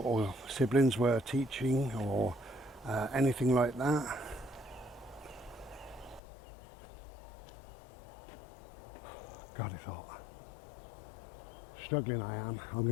siblings were teaching or anything like that. God, it's hot. Struggling I am. I'm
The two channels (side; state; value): right; drops out; at 6.2 s